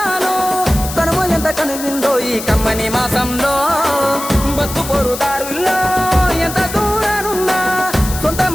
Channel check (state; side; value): noise; left; hiss, 9 dB below the sound